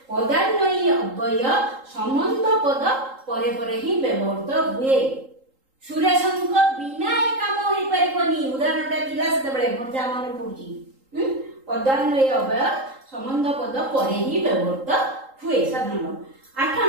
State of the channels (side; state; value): left; late; 3.8 ms